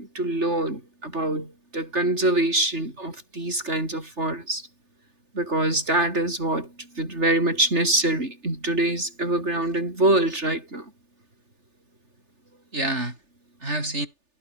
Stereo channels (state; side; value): late; left; 3.4 ms